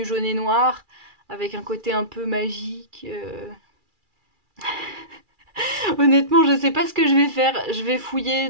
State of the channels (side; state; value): left; late; 2.4 ms